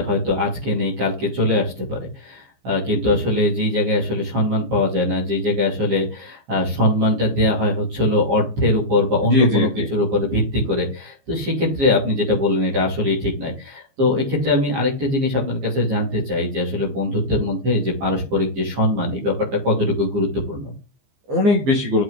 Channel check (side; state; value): left; late; 15 ms